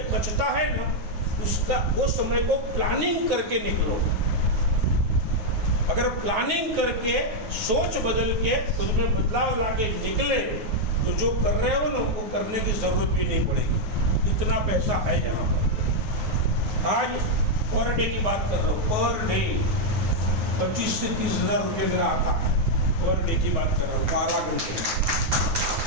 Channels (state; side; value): late; left; 9.4 ms